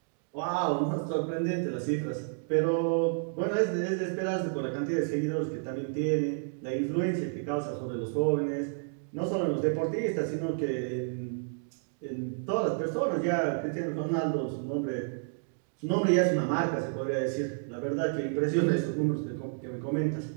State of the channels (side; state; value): left; silent; digital silence